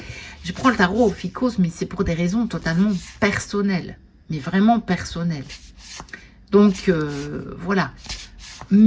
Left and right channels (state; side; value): identical; both; correlation 1.00